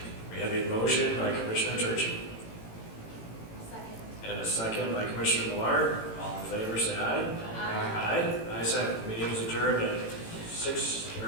We have a motion by Commissioner Turchi Second. and a second by Commissioner Millard. All in favor, say aye. Aye. Ayes have it. Meeting is adjourned at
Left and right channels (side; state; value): right; late; 18 ms